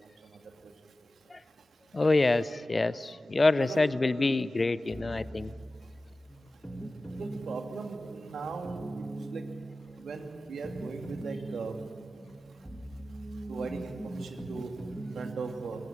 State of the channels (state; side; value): normal; both; correlation 0.95